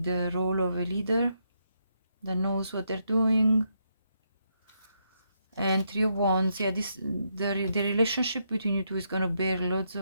the role of a leader that knows what they're doing. And Three of Wands. Yeah, the relationship between you two is going to bear loads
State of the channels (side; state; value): both; inverted; correlation -0.78